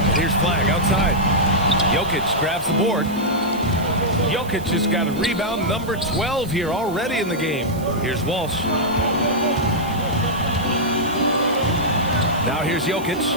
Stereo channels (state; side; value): noise; right; hiss, 19 dB below the sound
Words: Here's Flag outside. Jokic grabs the board. Jokic has got a rebound number 12 here already in the game. Here's Walsh. Now here's Jokic.